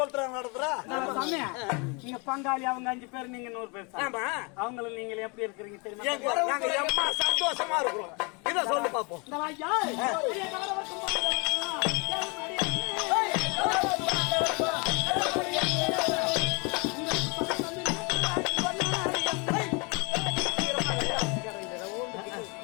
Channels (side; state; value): right; quieter; 31.1 dB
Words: நடத்துறா சாமி. நீங்க பங்காளி அவங்க 5 பேர் நீங்க 100 பேர் சாமி. அவங்களும் நீங்க எப்படி இருக்கிறீங்க தெரியுமா? நாங்க எம்மா சந்தோஷமா இருக்கிறோம். இத சொல்லு பாப்போம். இந்த வாயா